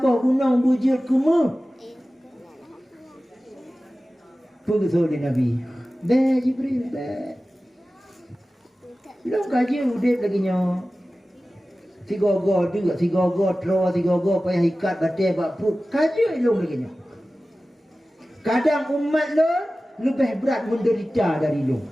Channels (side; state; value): both; normal; correlation 0.96